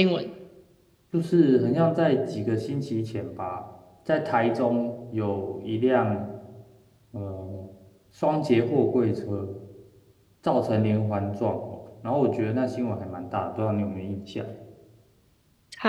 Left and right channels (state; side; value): identical; both; correlation 1.00